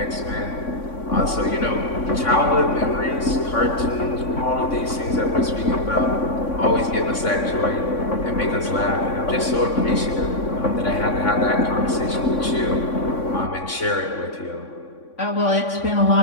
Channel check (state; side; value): late; right; 3.6 ms